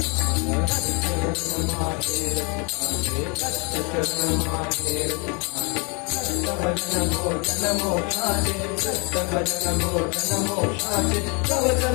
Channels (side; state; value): right; quieter; 32.4 dB